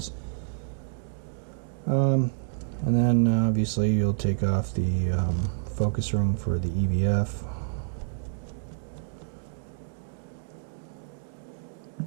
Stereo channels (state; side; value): silent; left; digital silence